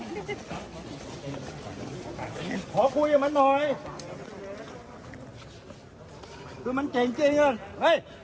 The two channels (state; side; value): identical; both; correlation 1.00